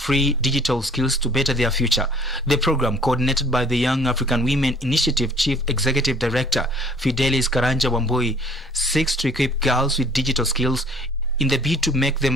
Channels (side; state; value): both; normal; correlation 0.55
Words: digital skills to better their future. The program, coordinated by the Young African Women Initiative Chief Executive Director Fidelis Karanja Wambui, seeks to equip girls with digital skills in the bid to make